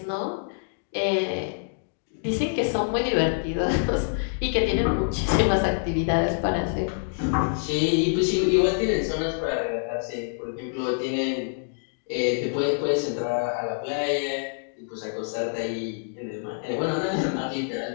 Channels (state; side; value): silent; right; digital silence